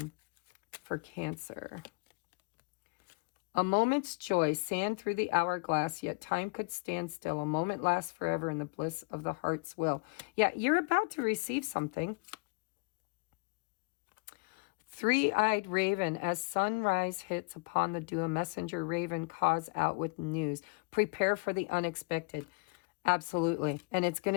for Cancer. A moment's joy, sand through the hourglass, yet time could stand still. A moment lasts forever in the bliss of the heart's will. Yeah, you're about to receive something. Three-eyed raven, as sunrise hits upon the dew, a messenger raven calls out with news. Prepare for the unexpected. Absolutely. And it's going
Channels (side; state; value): right; quieter; 30.2 dB